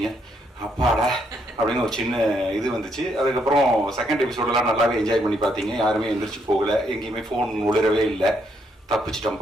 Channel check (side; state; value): both; normal; correlation 0.74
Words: அப்பாடா அப்படின்னு ஒரு சின்ன இது வந்துச்சு. அதுக்கப்புறம் செகண்ட் எபிசோடெல்லாம் நல்லாவே என்ஜாய் பண்ணி பார்த்தீங்க. யாருமே எந்திரிச்சு போகலை, எங்கேயுமே ஃபோன் உளிரவே இல்லை.